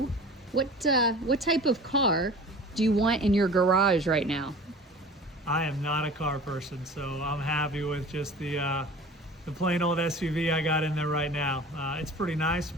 what type of car do you want in your garage right now? I am not a car person, so I'm happy with just the plain old SUV I got in there right now. It's pretty nice,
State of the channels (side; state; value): both; normal; correlation 0.41